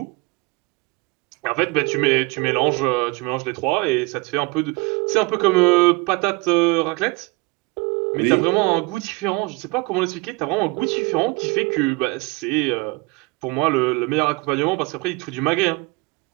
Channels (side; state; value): left; quieter; 25.6 dB